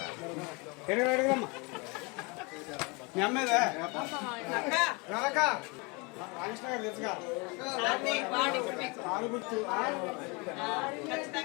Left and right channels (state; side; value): quieter; right; 28.9 dB